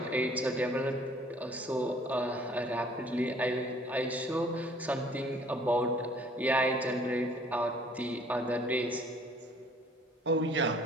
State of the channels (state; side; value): normal; both; correlation 0.56